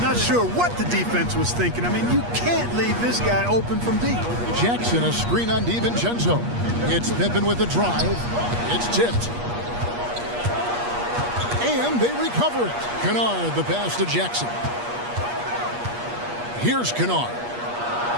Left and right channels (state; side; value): late; left; 8.4 ms